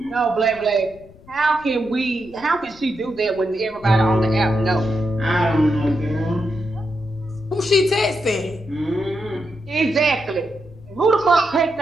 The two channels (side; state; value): left; noise; rumble, 23 dB below the sound